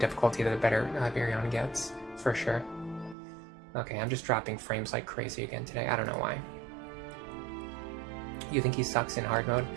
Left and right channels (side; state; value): left; drops out; at 3.2 s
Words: the better Virion gets, for sure. Okay, I'm just dropping frames like crazy again today. I don't know why. You think he sucks in hard mode?